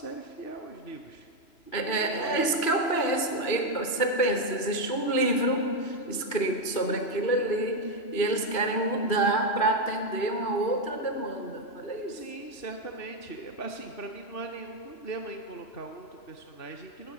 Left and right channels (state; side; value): late; right; 3.0 ms